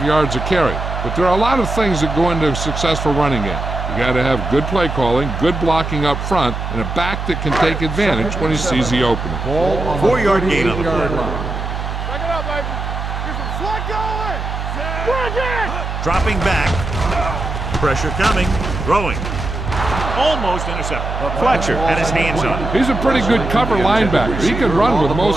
yards a carry. But there are a lot of things that go into a successful running game. You got to have good play calling, good blocking up front, and a back that can take advantage when he sees the opening. 4-yard gain on the play. Back it up, baby. Get some slack going. Bring it. Dropping back. Pressure coming. Throwing. Almost intercepted. Fletcher had his hands on it. He's a pretty good cover linebacker. He can run with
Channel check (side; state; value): right; noise; hum, 5 dB below the sound